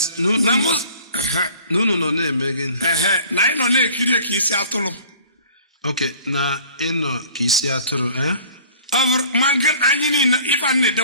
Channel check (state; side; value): inverted; both; correlation -0.48